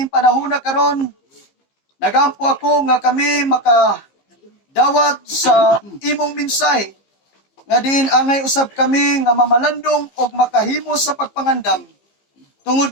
panahon na karon. Nagampo ako nga kami makadawat sa imong mensahe nga din angay usab kami nga mamalandong og makahimo sa pagpangandam. Tungod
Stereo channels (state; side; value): late; right; 15 ms